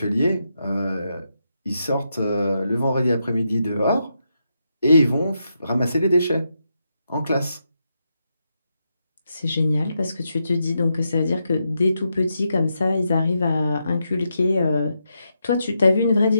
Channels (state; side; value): inverted; both; correlation -0.84